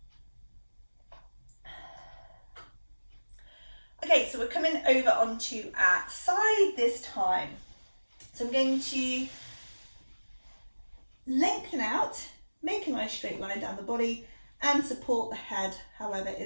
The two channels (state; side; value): inverted; both; correlation -1.00